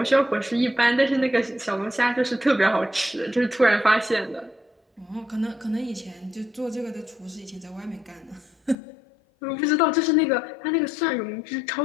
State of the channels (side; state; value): right; drops out; at 8.8 s